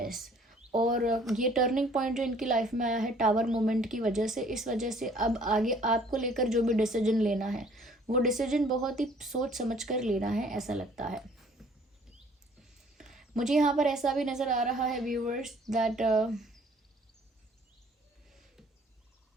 और ये टर्निंग पॉइंट जो इनकी लाइफ में आया है टावर मोमेंट की वजह से, इस वजह से अब आगे आपको लेकर जो भी डिसीजन लेना है वो डिसीजन बहुत ही सोच समझ कर लेना है, ऐसा लगता है मुझे। यहाँ पर ऐसा भी नज़र आ रहा है व्यूअर्स दैट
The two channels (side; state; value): both; normal; correlation 0.56